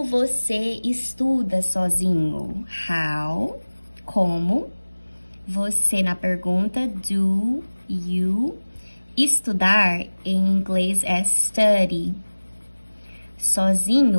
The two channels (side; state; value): both; inverted; correlation -1.00